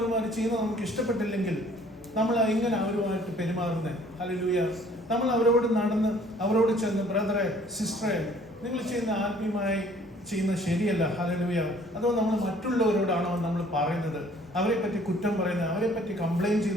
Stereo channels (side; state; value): both; normal; correlation 0.57